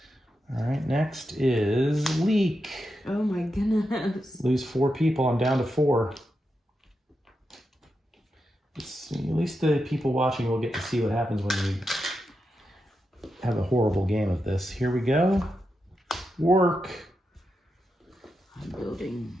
All right, next is leak. Oh my goodness. Lose 4 people. I'm down to 4. Let's see. At least the people watching will get to see what happens when you have a horrible game of this. Here we go. Work. I'm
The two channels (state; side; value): normal; both; correlation 0.87